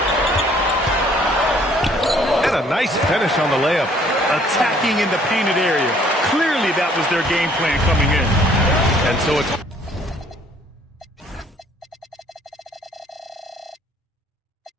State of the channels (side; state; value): both; normal; correlation 0.60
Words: And a nice finish on the layup. Attacking in the painted area. Clearly that was their game plan coming in. And so it's